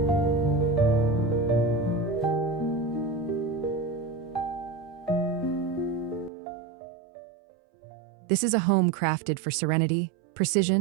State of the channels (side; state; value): left; drops out; at 6.3 s